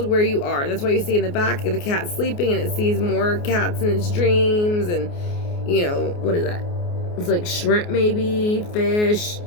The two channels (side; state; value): right; late; 29 ms